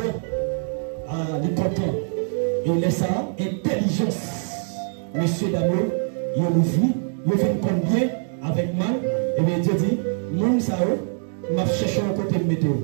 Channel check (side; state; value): left; silent; digital silence